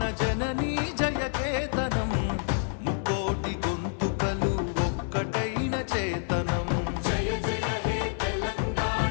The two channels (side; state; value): right; silent; digital silence